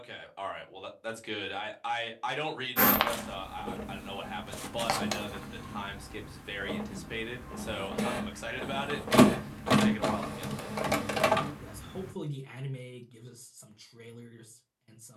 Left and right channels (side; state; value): both; identical; correlation 1.00